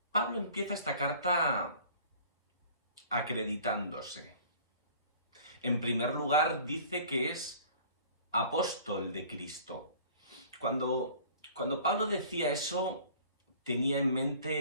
Pablo empieza esta carta acreditándose. En primer lugar, dice que es apóstol de Cristo. Cuando Pablo decía eso, tenía en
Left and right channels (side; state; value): both; inverted; correlation -0.48